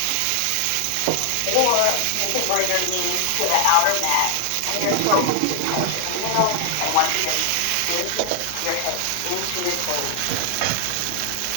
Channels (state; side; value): different; both; correlation 0.00